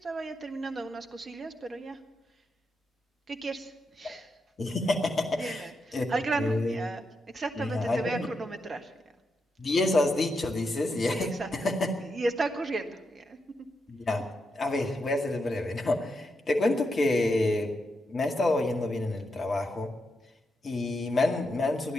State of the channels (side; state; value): both; normal; correlation 0.84